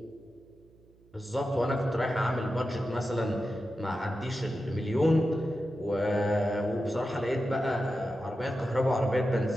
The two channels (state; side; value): noise; right; hum, 29 dB below the sound